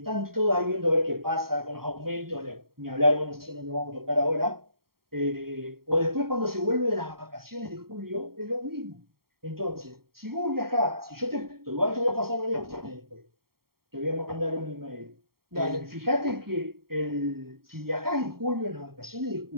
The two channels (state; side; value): late; left; 0.93 ms